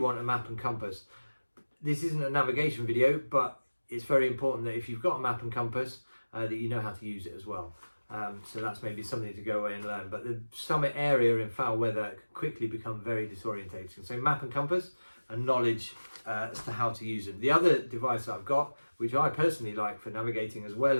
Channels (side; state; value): both; inverted; correlation -1.00